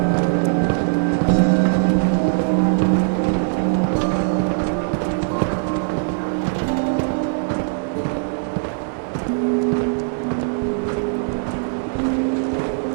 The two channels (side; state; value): left; silent; digital silence